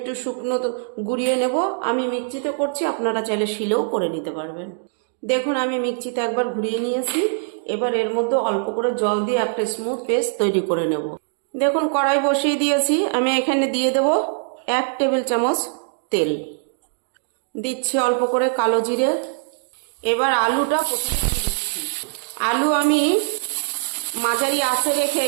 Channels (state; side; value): silent; left; digital silence